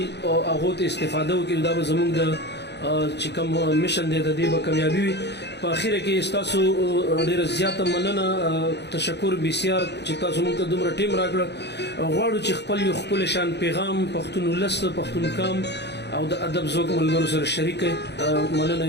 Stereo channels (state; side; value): late; right; 0.50 ms